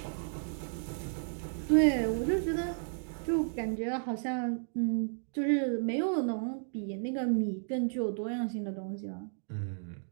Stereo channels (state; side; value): silent; left; digital silence